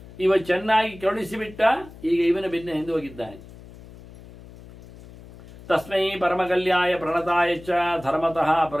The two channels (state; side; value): noise; left; hum, 19 dB below the sound